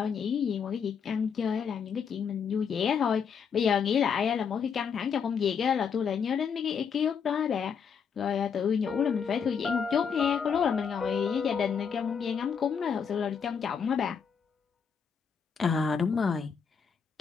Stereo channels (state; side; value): quieter; right; 6.7 dB